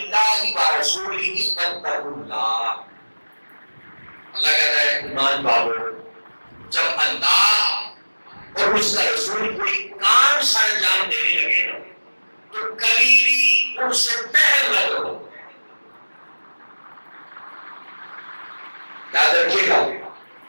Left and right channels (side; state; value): both; inverted; correlation -1.00